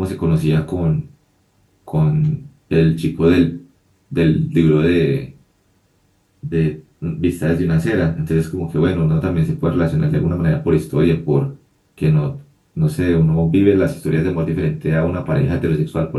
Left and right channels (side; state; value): both; identical; correlation 1.00